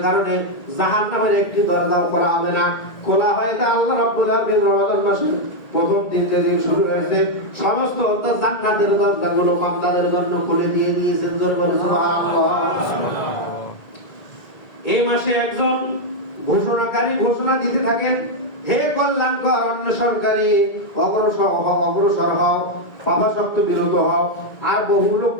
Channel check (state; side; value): late; right; 1.8 ms